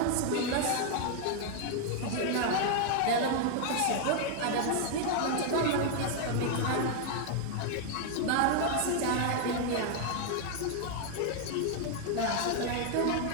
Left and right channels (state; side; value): different; both; correlation 0.00